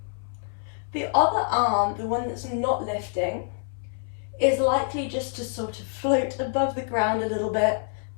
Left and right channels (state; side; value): silent; right; 61 dB below the other